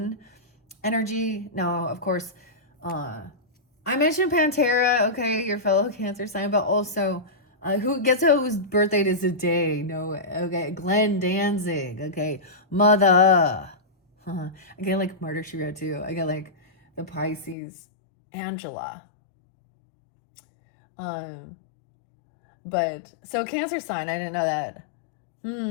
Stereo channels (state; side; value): drops out; right; at 17.6 s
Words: energy. No, of course. I mentioned Pantera, okay, your fellow Cancer sign, but also whose birthday is today? No, okay, Glenn Danzig, okay, mother. I get like Murder She Wrote too. I get like the Pisces, Angela. Um, but so Cancer sign, I didn't know that.